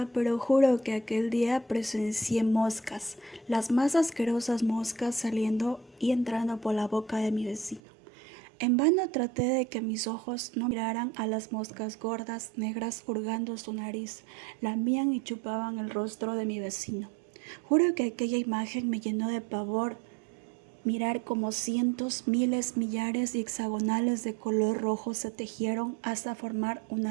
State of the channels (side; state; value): left; drops out; at 7.8 s